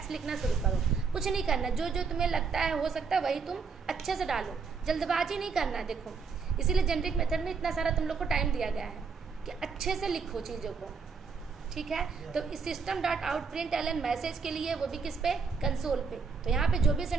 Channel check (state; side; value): quieter; left; 5.2 dB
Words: लिखना शुरू करो, कुछ नहीं करना, जो जो तुम्हें लगता है हो सकता है वही तुम अच्छे से डालो, जल्दबाजी नहीं करना। देखो इसीलिए जेनरिक मेथड में इतना सारा तुम लोग को टाइम दिया गया है कि अच्छे से लिखो चीज़ों को। ठीक है, तो इस system dot out print ln message के लिए, वो भी किस पे, कंसोल पे। तो यहाँ पे जो भी